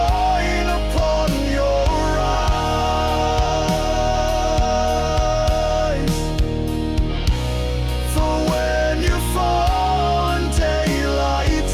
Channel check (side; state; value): both; identical; correlation 1.00